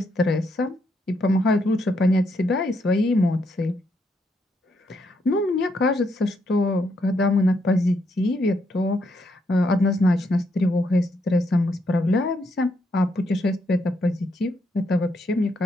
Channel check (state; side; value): normal; both; correlation 0.76